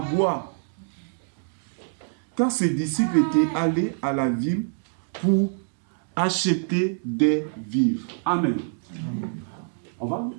boire. Car ses disciples étaient allés à la ville pour acheter des vivres. Amen.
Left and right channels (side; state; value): left; silent; digital silence